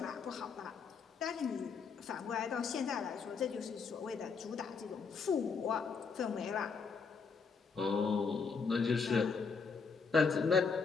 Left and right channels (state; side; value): quieter; right; 5.3 dB